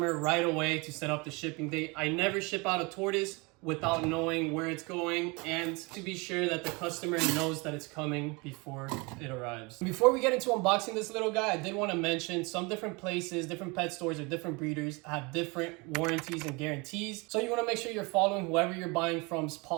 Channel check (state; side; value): quieter; left; 27.6 dB